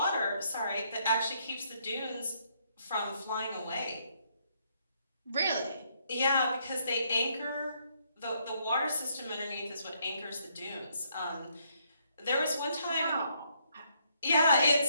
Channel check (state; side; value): inverted; both; correlation -0.71